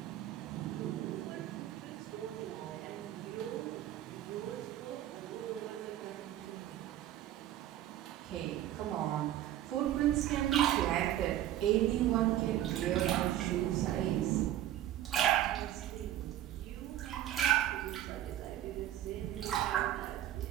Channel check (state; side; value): quieter; left; 12.8 dB